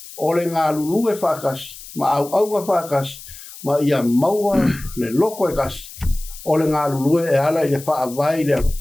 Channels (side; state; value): left; noise; hiss, 16 dB below the sound